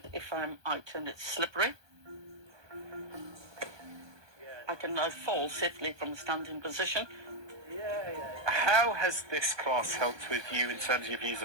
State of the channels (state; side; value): late; left; 1.2 ms